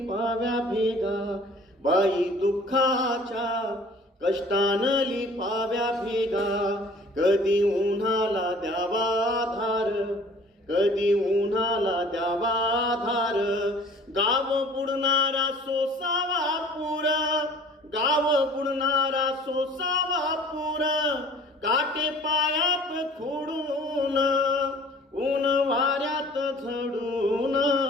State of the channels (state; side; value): normal; both; correlation 0.50